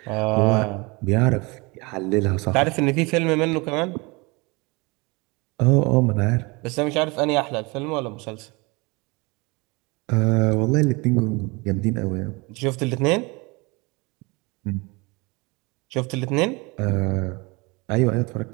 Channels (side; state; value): left; quieter; 26.6 dB